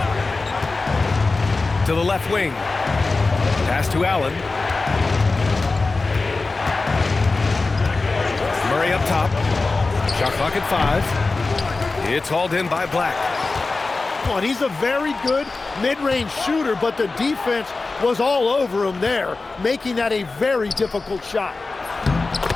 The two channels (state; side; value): quieter; right; 3.7 dB